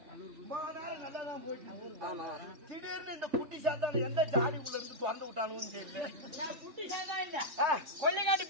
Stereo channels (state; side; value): late; left; 3.5 ms